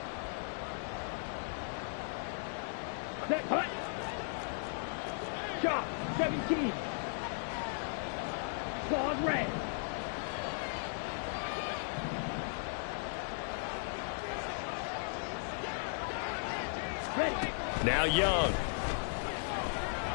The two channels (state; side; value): silent; right; digital silence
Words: Hut. Shot. 17. Claws red. Ready. Now Young.